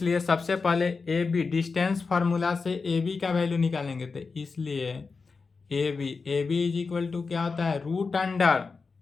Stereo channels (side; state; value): right; quieter; 4.6 dB